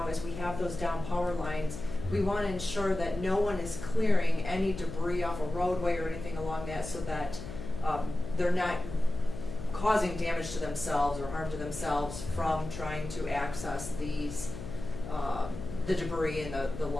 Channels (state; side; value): noise; left; hum, 10 dB below the sound